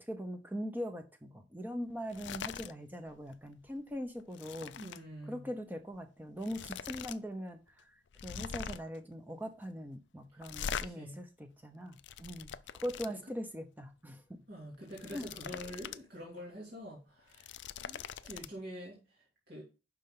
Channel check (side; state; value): both; normal; correlation 0.71